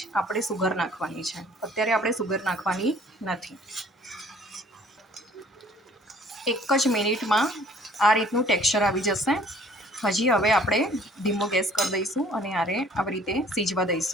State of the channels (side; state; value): both; normal; correlation 0.55